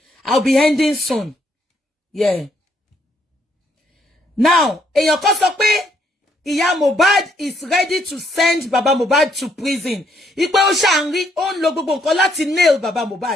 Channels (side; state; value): both; normal; correlation 0.71